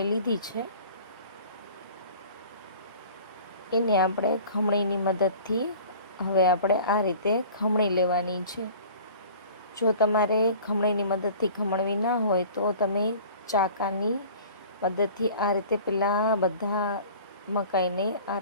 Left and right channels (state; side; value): inverted; both; correlation -0.45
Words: લીધી છે. એને આપણે ખમણીની મદદથી હવે આપણે આ રીતે ખમણી લેવાની છે. જો તમારે ખમણીની મદદથી ખમણવી ના હોય તો તમે ચાકાની મદદથી આ રીતે પહેલાં બધા મકાઈને આ